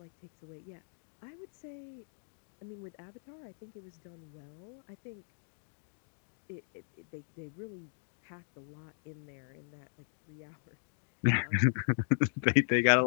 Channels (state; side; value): silent; right; digital silence